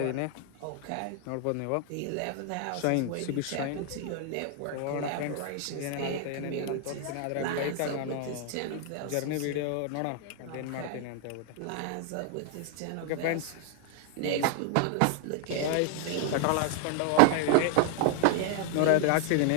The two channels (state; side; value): different; both; correlation 0.00